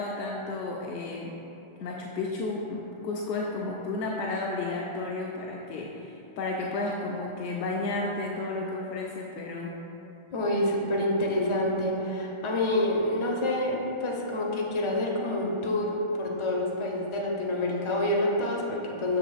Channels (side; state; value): right; late; 1.4 ms